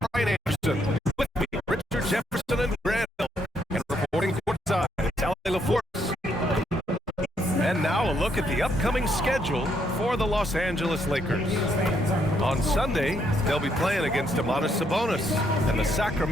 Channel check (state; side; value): normal; both; correlation 0.74